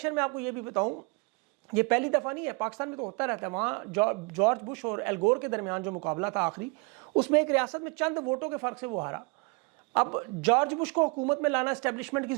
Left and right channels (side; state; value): left; quieter; 31.1 dB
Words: میں آپ کو یہ بھی بتاؤں، یہ پہلی دفعہ نہیں ہے، پاکستان میں تو ہوتا رہتا ہے، وہاں جارج بش اور ایل گور کے درمیان جو مقابلہ تھا آخری، اس میں ایک ریاست میں چند ووٹوں کے فرق سے وہ ہارا۔ اب جارج بش کو حکومت میں لانا اسٹیبلشمنٹ کی